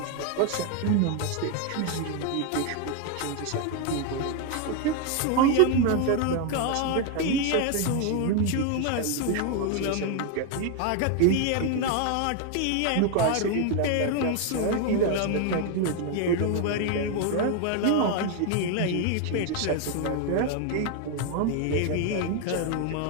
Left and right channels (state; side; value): different; both; correlation 0.01